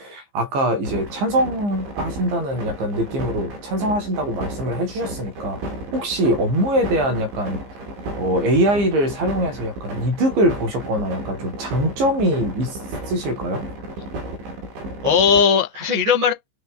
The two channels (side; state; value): left; late; 15 ms